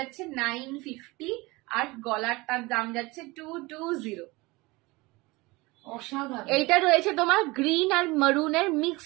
950, আর গলারটার দাম যাচ্ছে 220। অসাধারণ। এইটা রয়েছে তোমার গ্রিন আর মারুনের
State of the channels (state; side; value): quieter; left; 22.9 dB